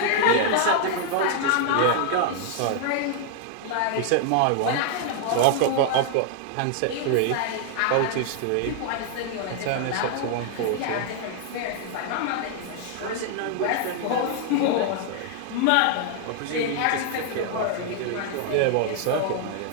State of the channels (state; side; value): different; both; correlation 0.00